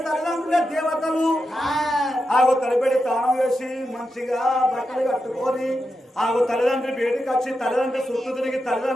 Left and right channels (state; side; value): normal; both; correlation 0.88